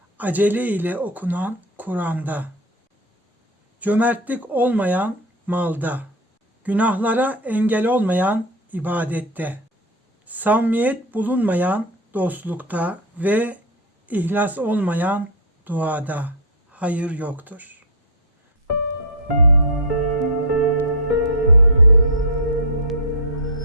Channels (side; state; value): both; normal; correlation 0.04